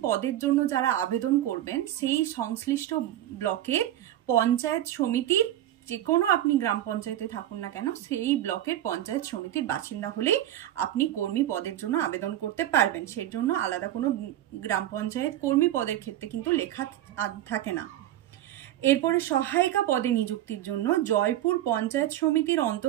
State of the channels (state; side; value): quieter; left; 12.9 dB